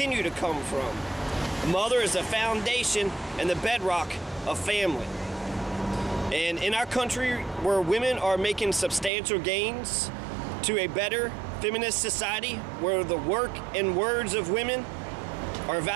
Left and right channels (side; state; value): left; drops out; at 9.1 s